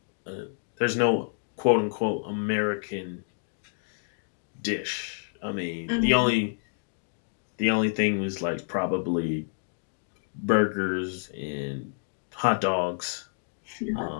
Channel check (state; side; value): silent; right; digital silence